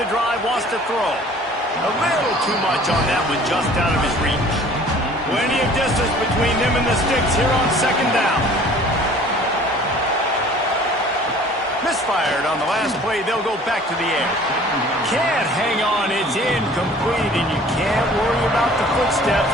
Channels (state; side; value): normal; both; correlation 0.50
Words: the drive, wants to throw. A little too much on that one, just out of his reach. Plenty of distance between them and the sticks here on second down. Missed fired. On the last play, they'll go back to the air. Can't hang on. It's incomplete, and you can't worry about the footsteps